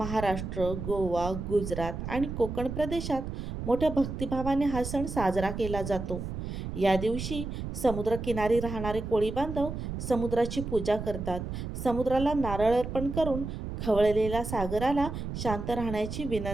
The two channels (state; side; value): noise; right; rumble, 6 dB below the sound